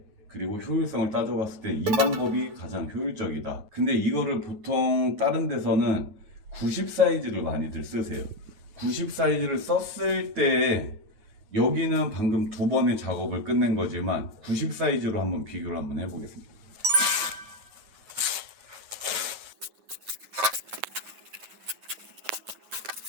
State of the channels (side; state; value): left; late; 9.4 ms